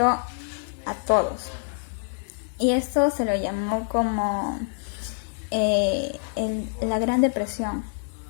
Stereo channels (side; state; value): right; silent; digital silence